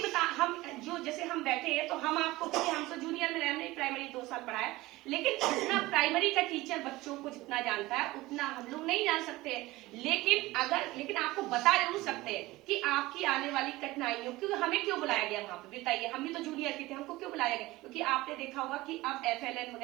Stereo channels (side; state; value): left; quieter; 19.2 dB